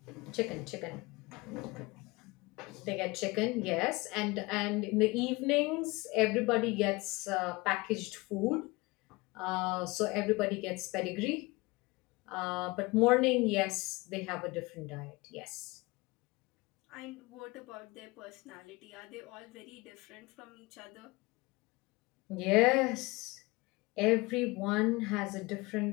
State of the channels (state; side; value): quieter; right; 23.5 dB